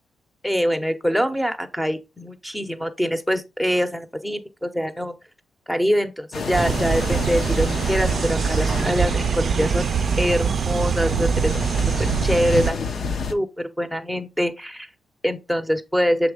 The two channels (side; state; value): both; normal; correlation 0.89